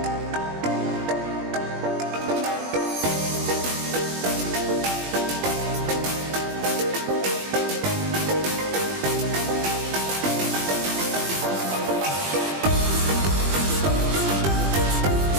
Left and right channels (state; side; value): late; left; 20 ms